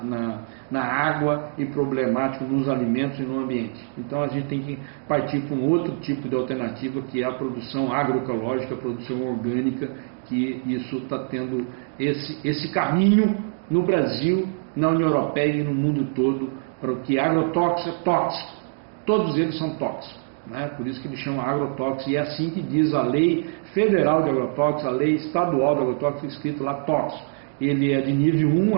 água e problemático nos alimentos e no ambiente. Então a gente tem que partir para um outro tipo de alternativa, que é a produção agroecológica, a produção orgânica, que isso está tendo esse caminho no Brasil, na União Europeia e no mundo todo, para o que agrotóxico é tóxico. Todos eles são tóxicos, né? Por isso que eles chamam agrotóxico, e é assim que diz a lei federal de agrotóxico, a lei estadual de agrotóxico, escrito lá tóxico. Ele é de nível 1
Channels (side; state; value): left; silent; digital silence